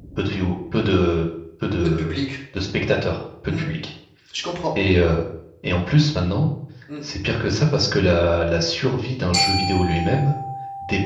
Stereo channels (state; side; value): identical; both; correlation 1.00